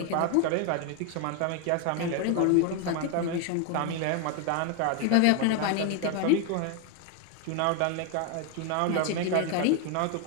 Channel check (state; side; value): different; both; correlation 0.01